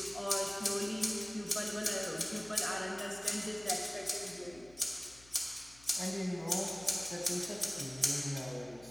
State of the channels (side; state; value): left; noise; hum, 23 dB below the sound